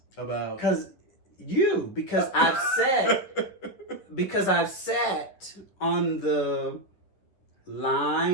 about because I've sat on the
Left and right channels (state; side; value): late; right; 10 ms